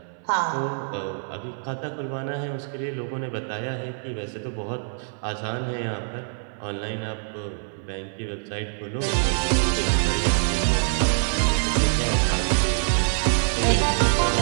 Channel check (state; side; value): silent; left; 62 dB below the other